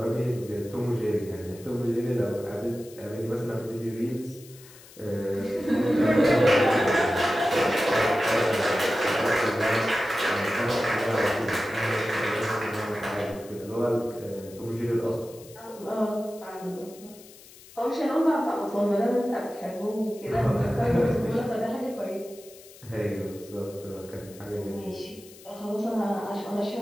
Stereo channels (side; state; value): left; noise; hiss, 21 dB below the sound